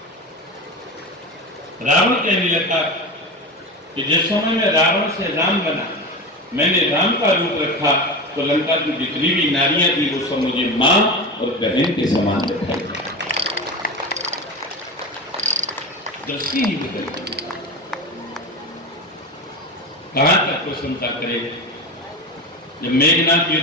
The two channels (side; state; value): both; normal; correlation 0.24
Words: रावण कहने लगा कि जिस समय में रावण से राम बना, मैंने राम का रूप रखा, तो लंका की जितनी भी नारियां थी वो सब मुझे मां और बहन के समान दिखाई। दृष्टि ही बदल गई। कहां तक प्रशंसा करेगा? जब मेघनाथ